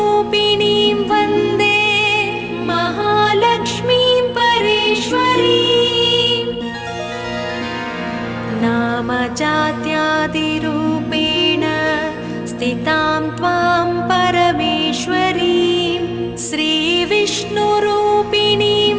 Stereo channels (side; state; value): both; identical; correlation 1.00